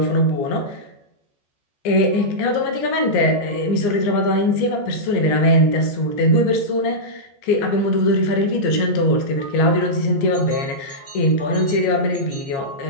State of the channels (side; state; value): right; late; 15 ms